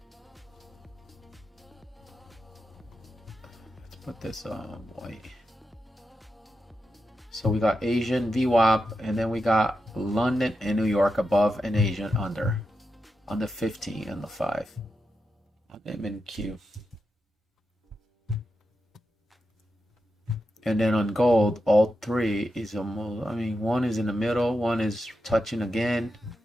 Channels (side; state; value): both; normal; correlation 0.88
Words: Let's put this on white. So we got Asian VWAP, and then we got London and New York above and Asian under on the 15 and the 5 on MNQ. And then on gold, all 3 is almost, I mean, one is in the middle, one is touching again.